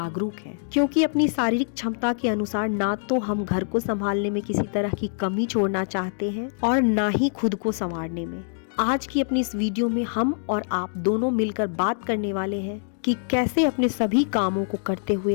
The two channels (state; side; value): silent; right; digital silence